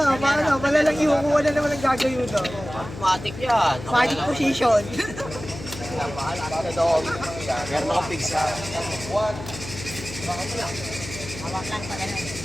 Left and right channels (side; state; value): left; noise; hum, 12 dB below the sound